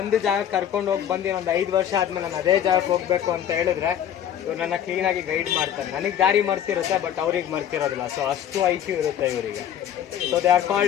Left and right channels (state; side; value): quieter; right; 10.0 dB